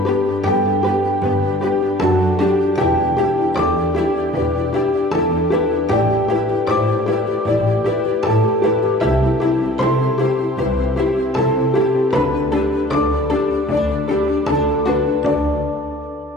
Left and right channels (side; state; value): both; normal; correlation 0.51